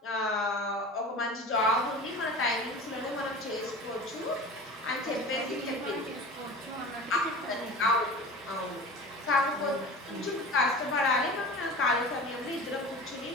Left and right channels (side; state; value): both; normal; correlation 0.35